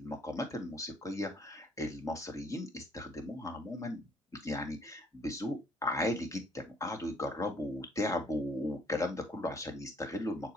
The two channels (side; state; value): both; normal; correlation 0.63